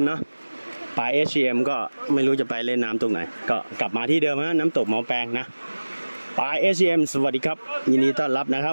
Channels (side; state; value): both; inverted; correlation -1.00